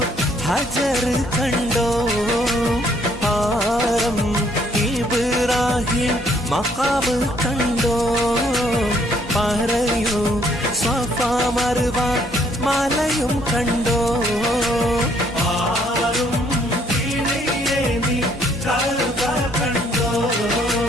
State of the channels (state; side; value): normal; both; correlation 0.66